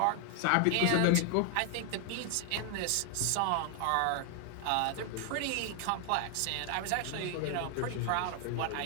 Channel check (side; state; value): both; different; correlation 0.00